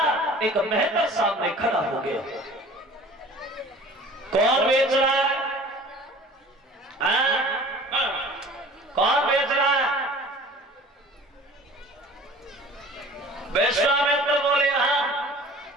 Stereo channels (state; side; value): normal; both; correlation 0.45